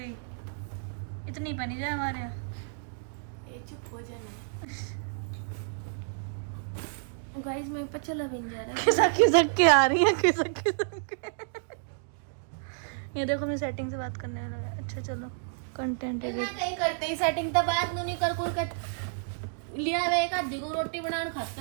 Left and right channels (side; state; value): left; silent; digital silence